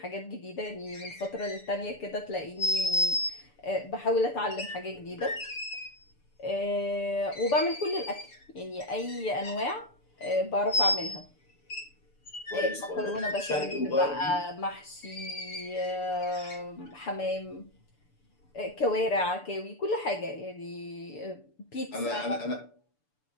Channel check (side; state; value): right; late; 6.9 ms